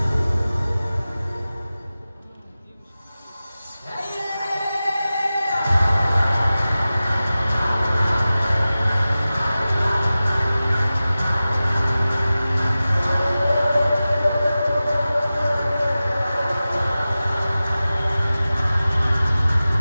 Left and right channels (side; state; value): both; inverted; correlation -0.96